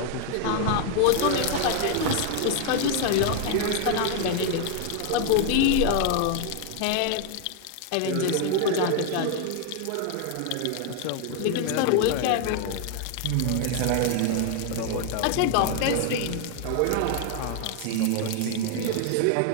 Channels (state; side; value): different; both; correlation 0.00